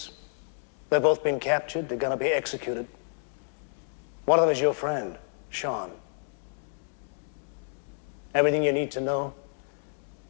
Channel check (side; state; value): right; silent; digital silence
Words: They've both been captured. They're gonna be executed. One of them is your friend, Sean. Everything you need to know